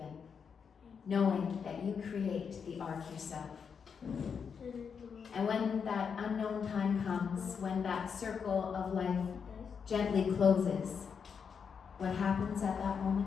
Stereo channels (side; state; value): right; quieter; 6.5 dB